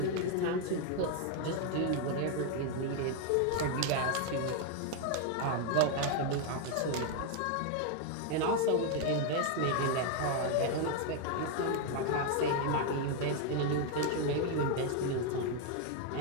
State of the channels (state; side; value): different; both; correlation 0.01